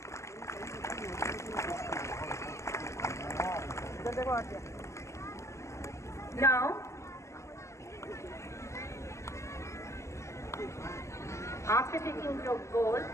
Now, after taking the gold,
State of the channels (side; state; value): right; late; 0.14 ms